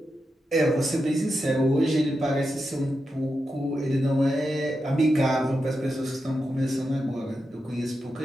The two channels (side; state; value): both; normal; correlation 0.88